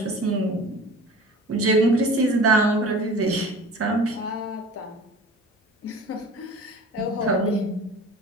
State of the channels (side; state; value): both; normal; correlation 0.41